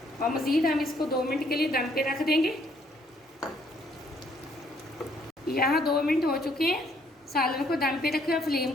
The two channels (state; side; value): normal; both; correlation 0.66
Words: और मज़ीद हम इसको 2 मिनट के लिए दम पे रख देंगे। यहाँ 2 मिनट हो चुके हैं, सालन को दम पे रखे और फ्लेम